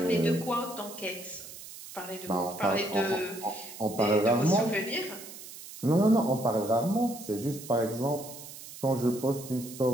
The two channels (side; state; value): right; noise; hiss, 14 dB below the sound